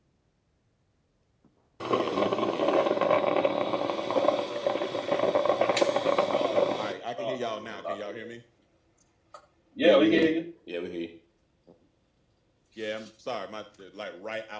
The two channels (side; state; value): both; identical; correlation 1.00